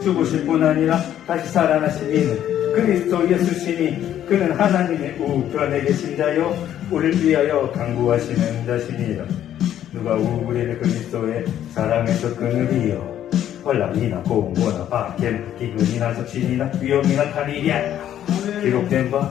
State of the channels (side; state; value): right; quieter; 11.1 dB